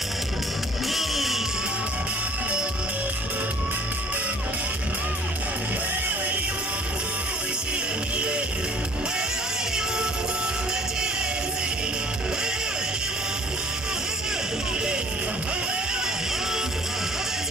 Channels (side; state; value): both; normal; correlation 0.53